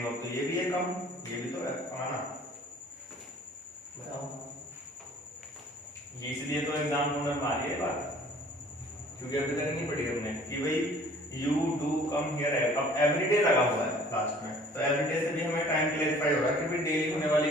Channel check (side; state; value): both; normal; correlation 0.52